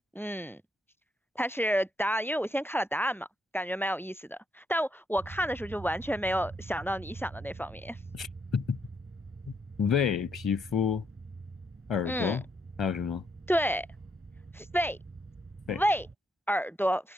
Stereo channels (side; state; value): both; normal; correlation 0.76